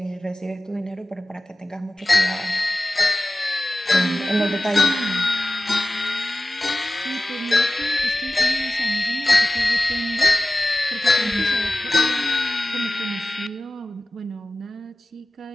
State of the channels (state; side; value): normal; both; correlation 0.95